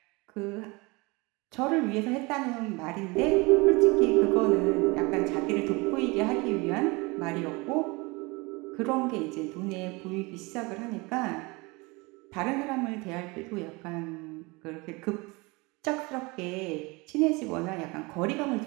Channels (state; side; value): quieter; left; 25.7 dB